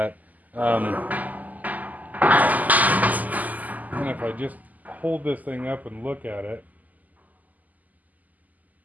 And if I just hold this thing up and look at it,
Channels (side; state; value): left; late; 0.080 ms